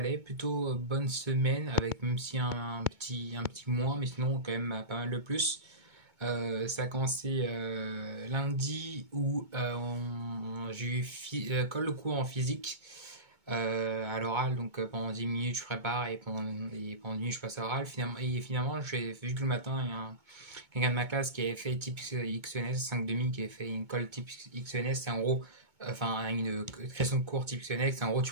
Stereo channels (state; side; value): late; left; 2.2 ms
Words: plutôt bonne semaine, avec même si un petit mois, mais sinon quand même pas mal de plus. Ça a commencé lundi où j'ai eu colle de cours en physique à l'oral, donc pendant 10 minutes je prépare et pendant 10 minutes je passe à l'oral. Finalement, j'ai vu que le matin, il y a quelqu'un de ma classe qui avait fait type XENS, 5 demi, qui avait fait une colle type XENS, c'est en gros, enfin une question de cours type XENS, c'est en gros tu